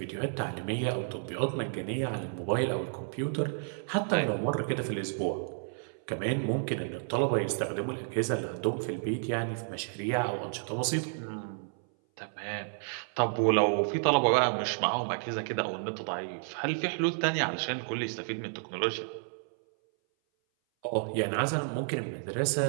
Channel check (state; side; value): silent; left; 57 dB below the other